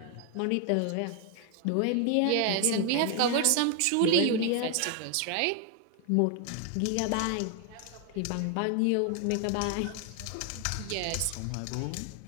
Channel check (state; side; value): different; both; correlation 0.01